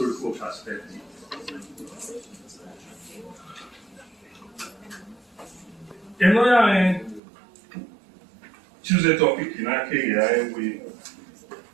perspective. And I choose a topic in Akea with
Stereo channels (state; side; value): drops out; left; at 7.2 s